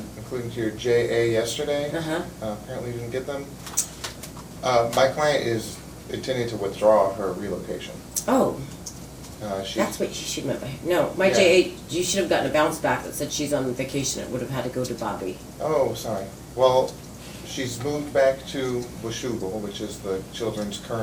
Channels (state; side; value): identical; both; correlation 1.00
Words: including to your JA yesterday. Apparently you didn't get them. My client is intending to withdraw her relocation. Oh. That's what she should have meant by, no, my Yeah. JA, you should have gotten a bounce back that said she's on vacation. It would have had to go to Bobby. Oh, sorry. Well, she's moved back to Washougal, which is the children's